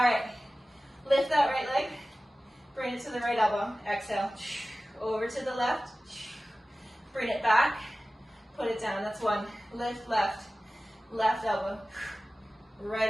right, lift that right leg, bring it to the right elbow, exhale, over to the left, bring it back, put it down, that's 1. Lift left, left elbow,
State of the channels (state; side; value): normal; both; correlation 0.96